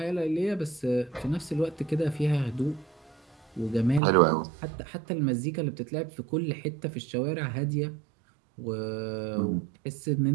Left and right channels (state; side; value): drops out; left; at 4.0 s